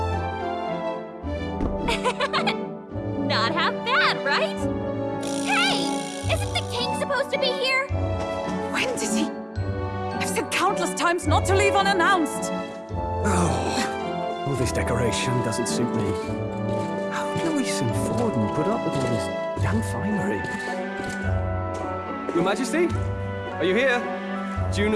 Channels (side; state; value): both; identical; correlation 1.00